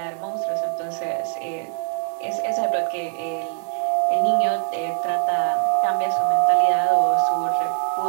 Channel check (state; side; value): silent; left; 64 dB below the other